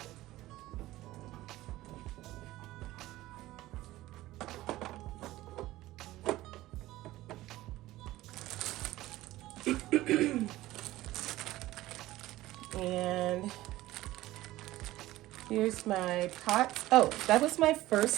And here's my pot. Oh, that was my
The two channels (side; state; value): left; quieter; 16.6 dB